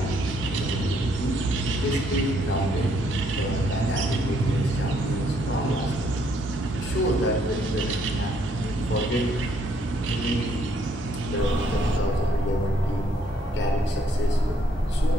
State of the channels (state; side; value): normal; both; correlation 0.69